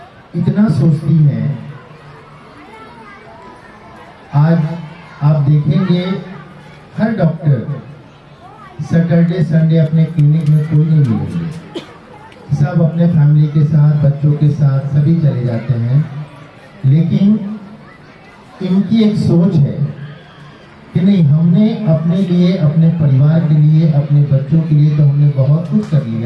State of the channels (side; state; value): both; identical; correlation 1.00